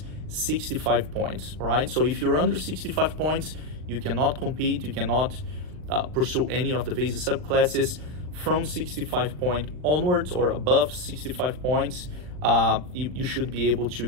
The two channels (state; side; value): late; left; 39 ms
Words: 65 points, all right? So if you're under 65 points, you cannot compete, you cannot pursue any of the visa subclasses. From 65 point onwards or above 65 points, you should be able